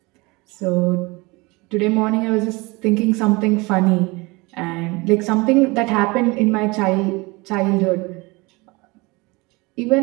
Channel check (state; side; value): quieter; left; 24.8 dB